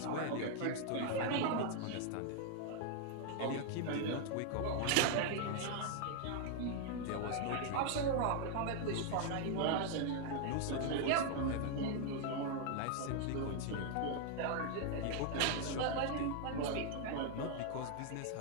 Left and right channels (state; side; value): different; both; correlation 0.00